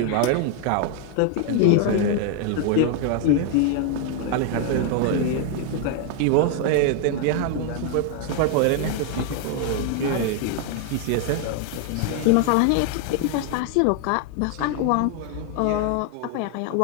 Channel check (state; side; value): different; both; correlation 0.00